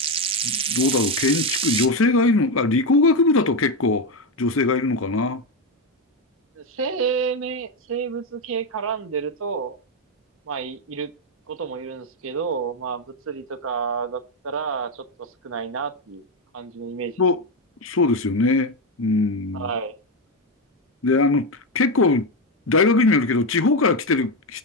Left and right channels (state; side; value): normal; both; correlation 0.09